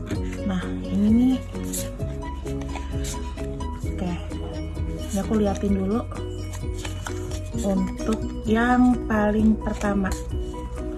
Nah ini nih, oke, ini aku liatin dulu. Untuk yang paling pertama,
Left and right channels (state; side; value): identical; both; correlation 1.00